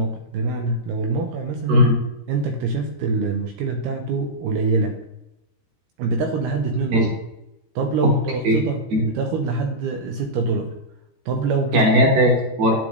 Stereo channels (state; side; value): late; left; 13 ms